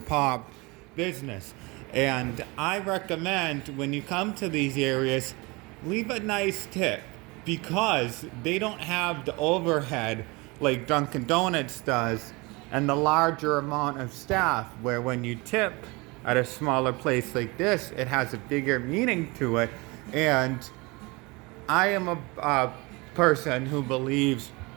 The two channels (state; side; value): quieter; left; 25.6 dB